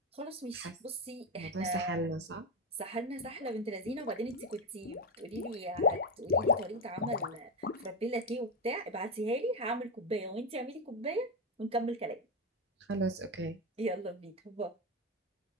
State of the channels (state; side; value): normal; both; correlation 0.12